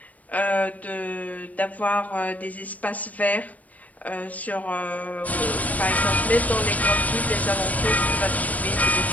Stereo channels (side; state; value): right; late; 0.072 ms